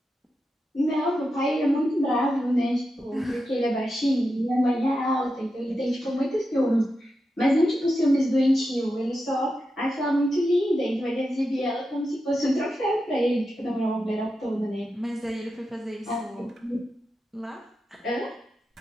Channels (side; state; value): both; normal; correlation 0.89